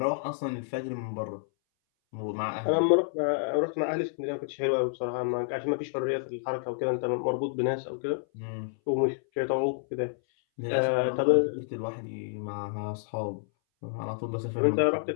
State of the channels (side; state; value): right; silent; 58 dB below the other